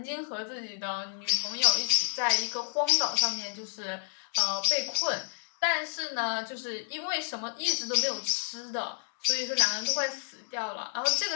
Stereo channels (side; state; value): right; silent; 58 dB below the other